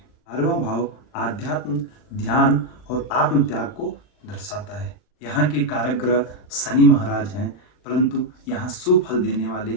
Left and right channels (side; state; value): right; late; 39 ms